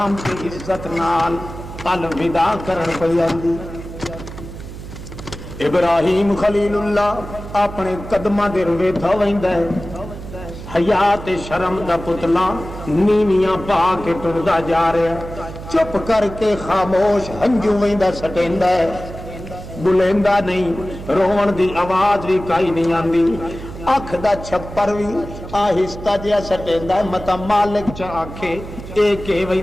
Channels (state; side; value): noise; right; hum, 12 dB below the sound